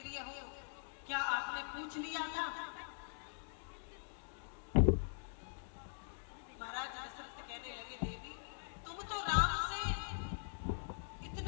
हो, क्या आपने पूछ लिया था? महाराज दशरथ कहने लगे, देवी, तुम तो राम से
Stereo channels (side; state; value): right; silent; digital silence